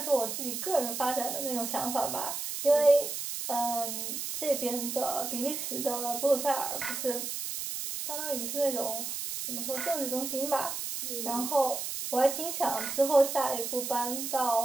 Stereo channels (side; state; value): right; noise; hiss, 4 dB below the sound